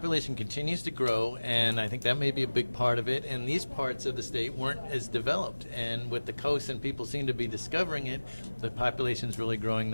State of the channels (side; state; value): both; inverted; correlation -1.00